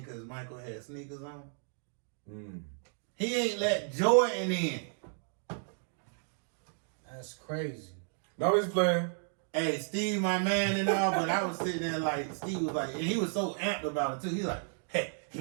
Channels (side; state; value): left; silent; 56 dB below the other